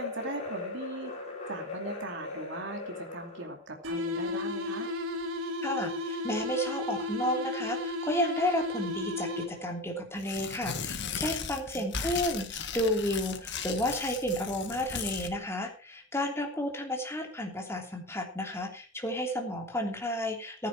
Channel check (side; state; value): both; normal; correlation 0.27